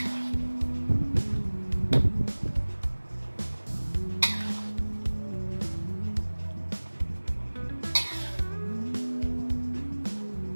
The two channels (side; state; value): both; inverted; correlation -1.00